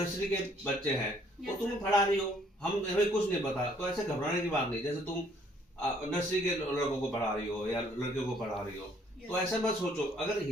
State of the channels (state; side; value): normal; both; correlation 0.63